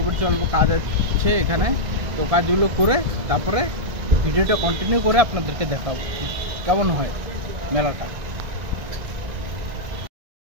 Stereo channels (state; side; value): late; left; 1.6 ms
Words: পড়ছি, অল্প কাজ আছে এখানে। তো কাজগুলো করে তারপরে ভিডিওটা কন্টিনিউ করে আপনাদেরকে দেখাবো কেমন হয় মেলাটা।